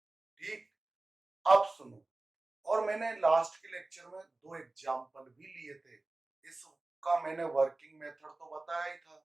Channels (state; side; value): quieter; left; 3.0 dB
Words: ठीक, अब सुनो, और मैंने लास्ट के लेक्चर में दो एग्जाम्पल भी लिए थे। इसका मैंने वर्किंग मेथड तो बताया ही था,